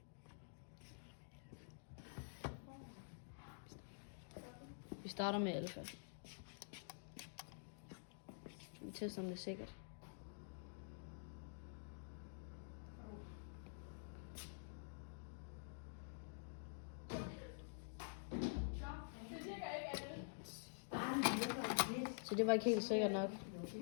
Vi starter med alfa. Vi tester, om det er sikkert. Så det var ikke helt sikkert nok.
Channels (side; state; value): right; silent; digital silence